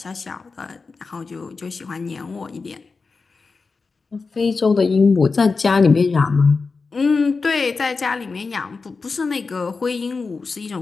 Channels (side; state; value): right; quieter; 4.4 dB